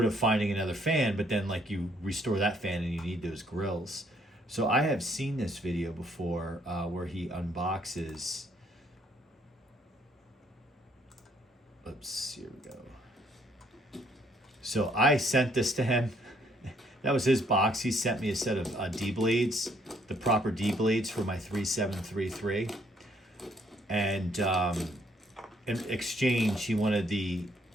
of finding another fan. But then, like, you restore that fan and you need those grills. So I have seen this video before where he unboxes. Oops, here we go. So I sent this to him. That was his box. He sent me a set of D blades, the proper D blades for my 3733. And in exchange, he wanted the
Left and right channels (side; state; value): both; normal; correlation 0.67